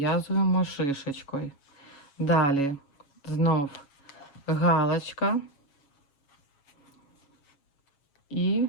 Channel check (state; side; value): late; right; 7.2 ms